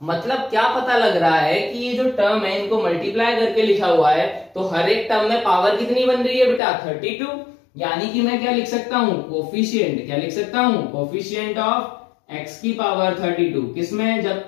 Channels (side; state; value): right; drops out; at 6.6 s